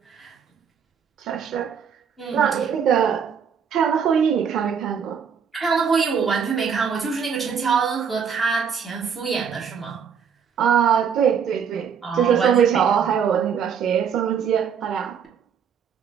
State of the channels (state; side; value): quieter; left; 7.1 dB